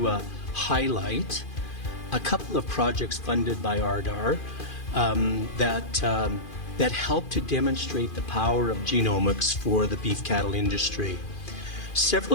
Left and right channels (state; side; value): late; right; 2.4 ms